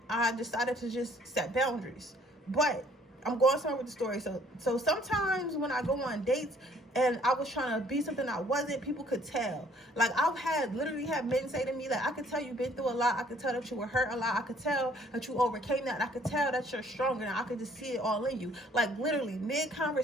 I decided to just set boundaries. But I'm going somewhere with the story. So sometimes when I go on dates and I was trying to be something I wasn't, people could tell. Like, I've literally had men say to me, like, I could tell you've been through a lot. I could tell that you were hurt a lot. I could tell that you overcame that. And I could tell that you're stronger. And I could just see it all in you. Like, literally,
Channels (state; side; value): normal; both; correlation 0.60